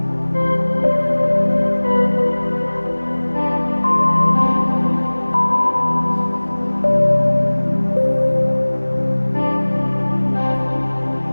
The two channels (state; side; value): inverted; both; correlation -1.00